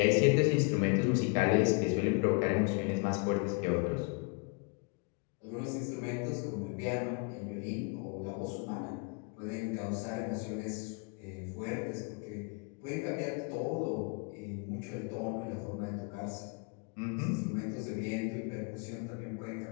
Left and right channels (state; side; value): quieter; right; 33.3 dB